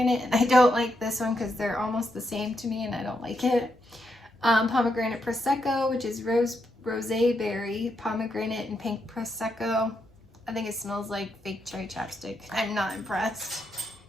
and I don't like this one because they're almost the same to me, and I don't like it. Pomegranate Prosecco, which is rosé berry, pomegranate, and pink Prosecco. I think it smells like fake cherry chapstick. I'm not impressed.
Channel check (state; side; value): normal; both; correlation 0.81